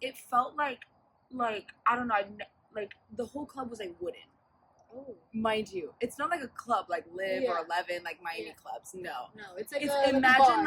felt like I don't know, like the whole club was like wooden. Oh. Mind you, it's not like a club like Live Yeah. or 11 like Miami Yeah. clubs. No, No, it's like it's a imagine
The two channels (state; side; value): identical; both; correlation 1.00